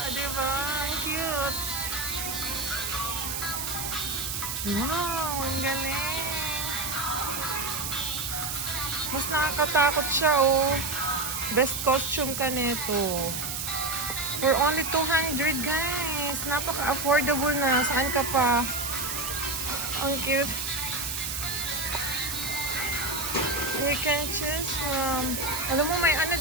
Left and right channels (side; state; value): right; noise; hiss, 3 dB below the sound